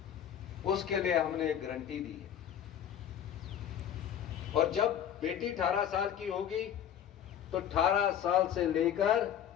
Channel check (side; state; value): right; quieter; 9.8 dB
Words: उसके लिए हमने एक गारंटी दी है, और जब बेटी 18 साल की होगी तो 18 साल से लेकर